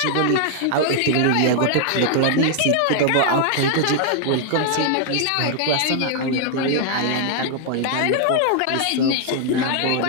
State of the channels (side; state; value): both; different; correlation 0.00